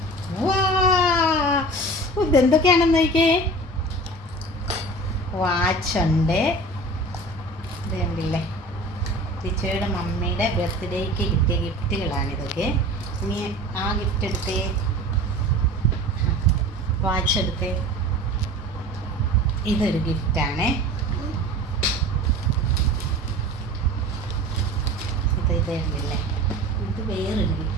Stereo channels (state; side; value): normal; both; correlation 0.38